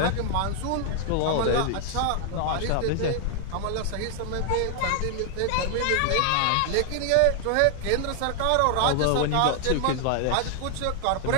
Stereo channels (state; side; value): different; both; correlation 0.00